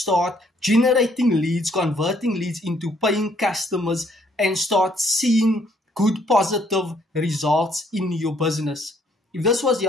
generating leads, converting leads into paying customers, and start seeing good positive results in your business. If this was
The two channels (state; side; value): normal; both; correlation 0.66